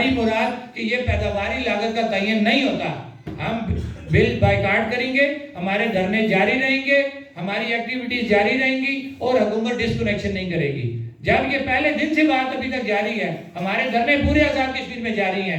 مراد کہ یہ پیداواری لاگت کا تعین نہیں ہوتا، ہم بل بائیکاٹ کریں گے، ہمارے دھرنے جاری رہیں گے، ہماری ایکٹیویٹیز جاری رہیں گی اور حکومت ڈسکنیکشن نہیں کرے گی. جب یہ پہلے دن سے بات ابھی تک جاری ہے، ہمارے دھرنے پورے آزاد کشمیر میں جاری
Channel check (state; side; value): identical; both; correlation 1.00